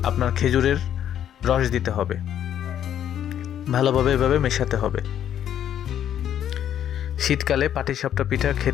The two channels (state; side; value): quieter; right; 10.2 dB